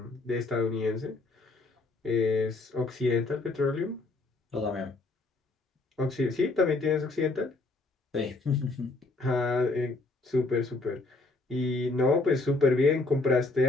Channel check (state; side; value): quieter; right; 3.3 dB